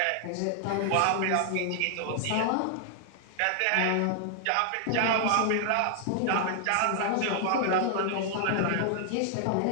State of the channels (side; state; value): both; different; correlation 0.00